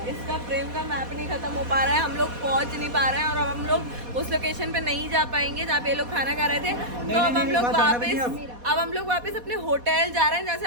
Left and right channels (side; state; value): left; late; 4.1 ms